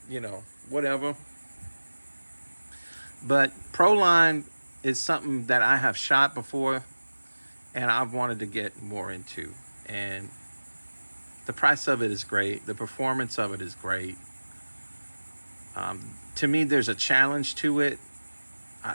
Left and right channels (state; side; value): inverted; both; correlation -1.00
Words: whatever. But Proline is something that I have shot before, and I've wanted to get more into. And the price of it is great. The performance of it is great. To me, there's a challenge to it.